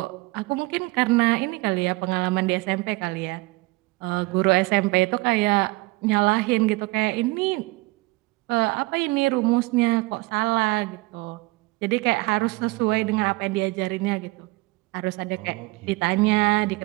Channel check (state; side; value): quieter; left; 23.2 dB